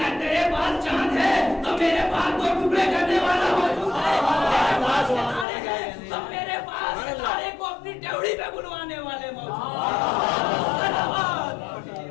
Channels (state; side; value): drops out; right; at 5.5 s